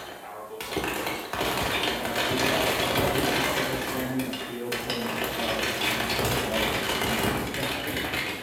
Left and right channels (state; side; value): identical; both; correlation 1.00